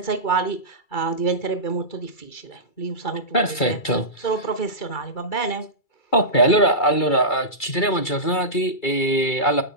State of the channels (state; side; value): late; right; 2.3 ms